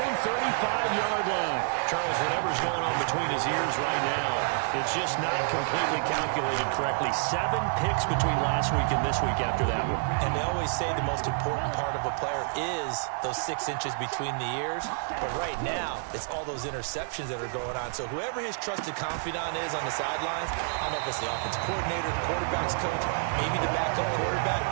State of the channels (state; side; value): silent; left; 59 dB below the other